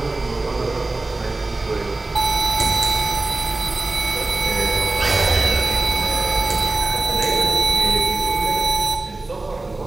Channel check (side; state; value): left; quieter; 3.1 dB